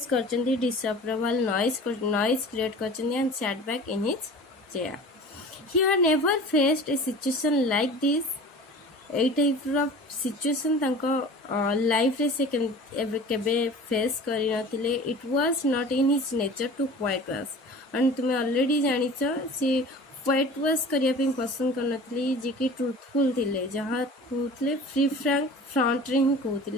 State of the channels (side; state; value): both; normal; correlation 0.40